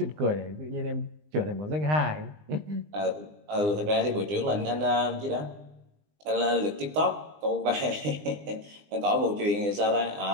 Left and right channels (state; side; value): late; left; 20 ms